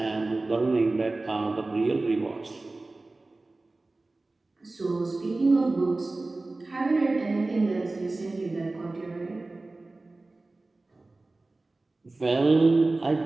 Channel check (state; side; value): quieter; left; 3.2 dB